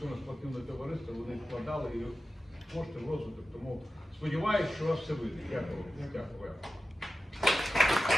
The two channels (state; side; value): normal; both; correlation 0.93